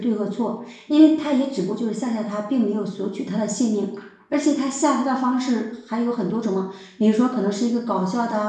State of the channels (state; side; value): identical; both; correlation 1.00